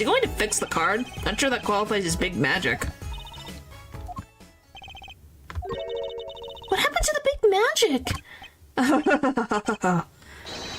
going to fix the card? Not sure that qualifies as big magic. What happened to the big magic?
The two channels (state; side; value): identical; both; correlation 1.00